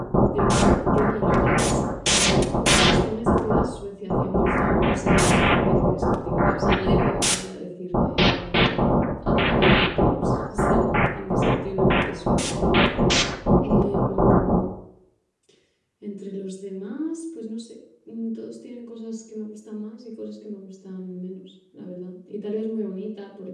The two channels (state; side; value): identical; both; correlation 1.00